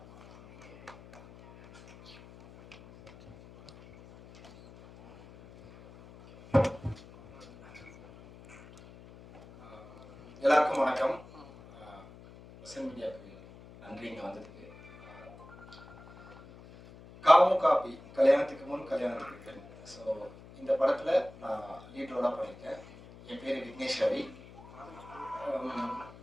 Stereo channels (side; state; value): left; noise; hum, 20 dB below the sound